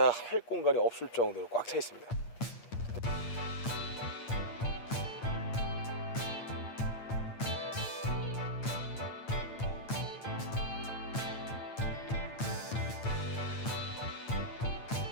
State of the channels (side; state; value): right; late; 8.8 ms